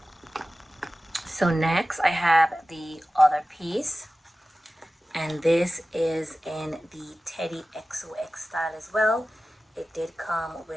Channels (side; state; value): both; normal; correlation 0.96